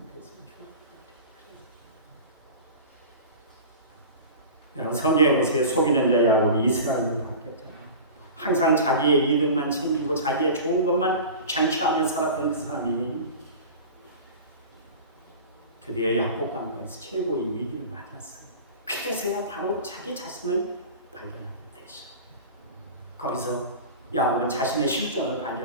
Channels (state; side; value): inverted; both; correlation -0.35